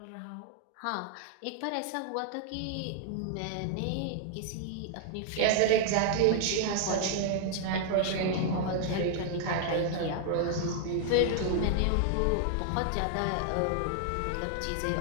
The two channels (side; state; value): both; different; correlation 0.00